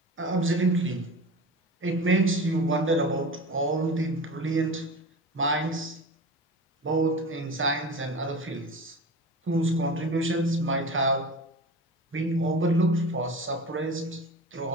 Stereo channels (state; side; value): normal; both; correlation 0.32